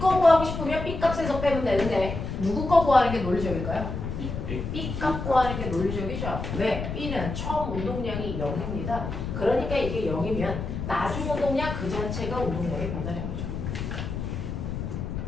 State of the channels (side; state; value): left; noise; rumble, 5 dB below the sound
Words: 구하고 싶으면 B 값에서 빼면 되는데 누구 거 구하는 게 논리적일까요? B 값 구하는 게 논리적이죠. 왜? B는 처음 운동량이 0입니다. 그러니까 이게 0이면 나중 운동량 그 자체가 운동량의 변화량이죠.